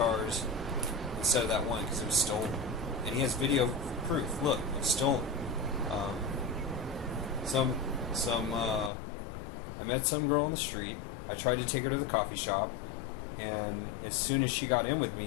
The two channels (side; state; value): right; drops out; at 8.9 s